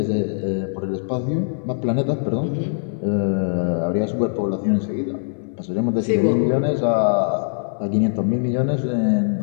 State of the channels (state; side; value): silent; right; digital silence